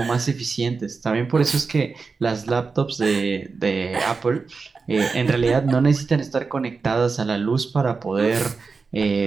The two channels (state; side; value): quieter; left; 4.6 dB